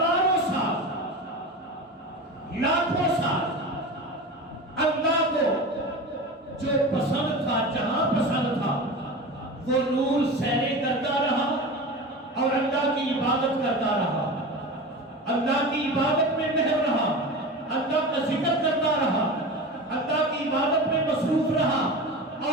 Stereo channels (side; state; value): both; normal; correlation 0.29